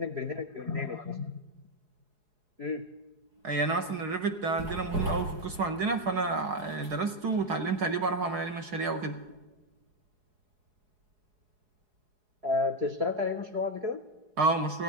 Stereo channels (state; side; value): late; left; 4.7 ms